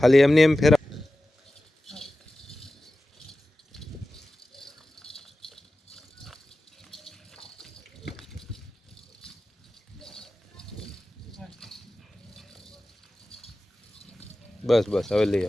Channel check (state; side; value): normal; both; correlation 0.95